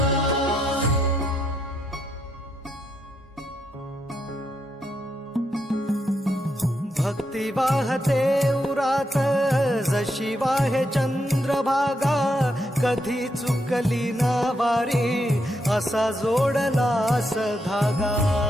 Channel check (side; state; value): both; normal; correlation 0.80